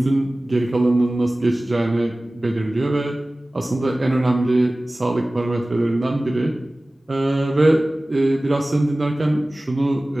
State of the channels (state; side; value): normal; both; correlation 0.98